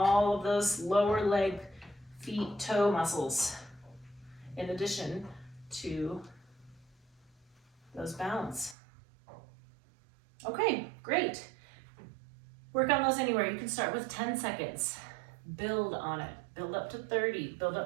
of those lower leg, feet, toe muscles, in addition to those balance. Okay, great. Work on those anywhere. You can start with 10 seconds. Build on it. Build up to 30. Build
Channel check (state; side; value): drops out; left; at 8.8 s